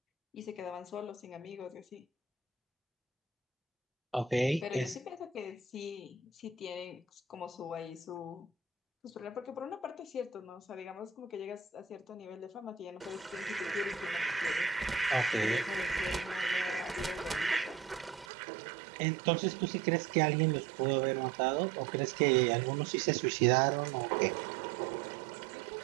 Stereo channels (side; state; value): left; drops out; at 18.2 s